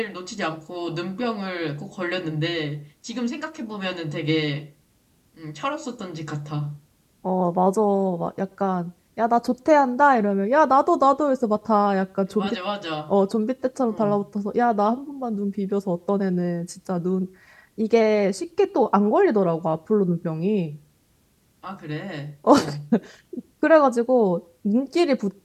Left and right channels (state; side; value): identical; both; correlation 1.00